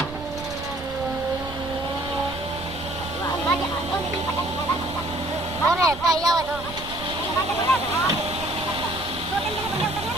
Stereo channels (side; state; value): right; noise; rumble, 14 dB below the sound